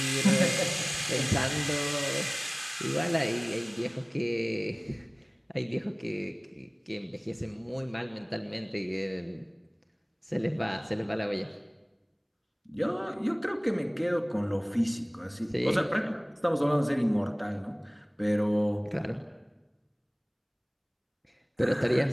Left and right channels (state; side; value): identical; both; correlation 1.00